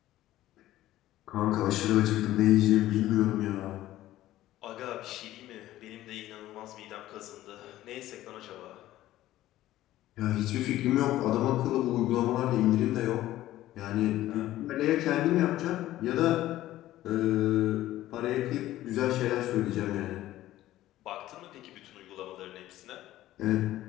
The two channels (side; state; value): right; quieter; 14.7 dB